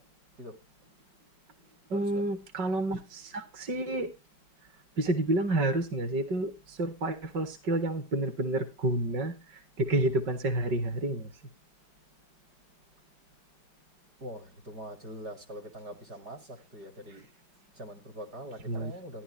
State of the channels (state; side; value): late; left; 5.3 ms